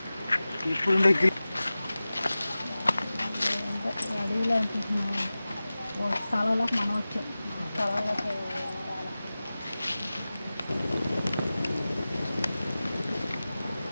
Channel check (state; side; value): inverted; both; correlation -0.97